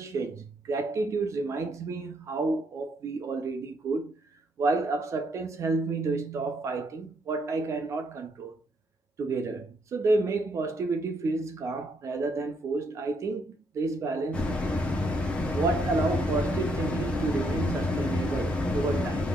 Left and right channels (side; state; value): both; normal; correlation 0.73